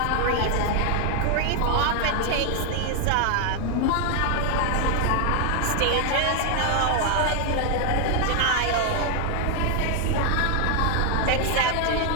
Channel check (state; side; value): different; both; correlation 0.00